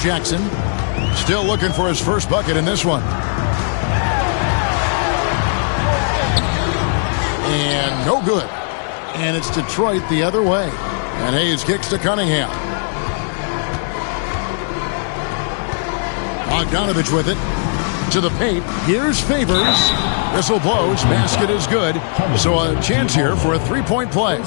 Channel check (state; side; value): silent; right; digital silence